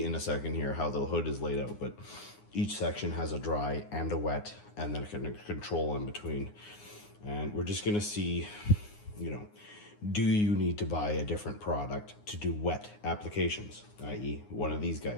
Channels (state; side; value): late; right; 9.7 ms